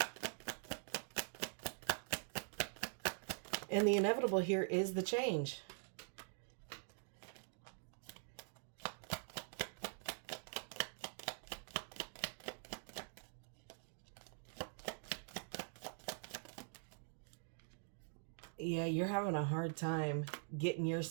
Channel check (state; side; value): silent; left; digital silence